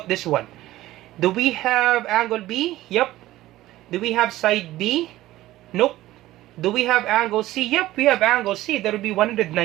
this one? Do we have angle B? Yep. Do we have side B? Nope. Do we have angle C? Yep, we have angle C. That will be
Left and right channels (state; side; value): quieter; left; 15.8 dB